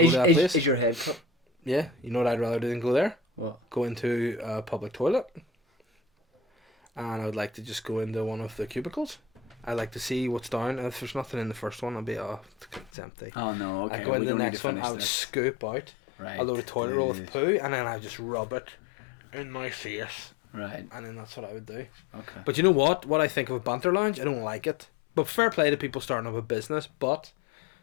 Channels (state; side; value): drops out; right; at 12.9 s